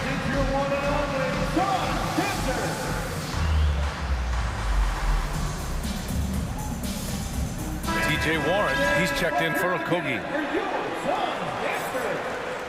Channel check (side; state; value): both; identical; correlation 1.00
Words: It's your one and only TJ Warren, he's checked in for Okogie.